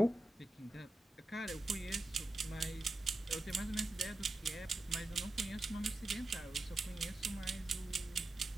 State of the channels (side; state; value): both; normal; correlation 0.91